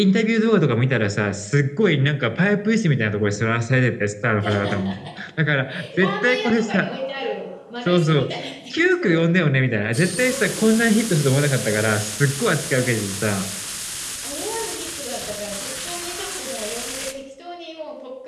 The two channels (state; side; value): identical; both; correlation 1.00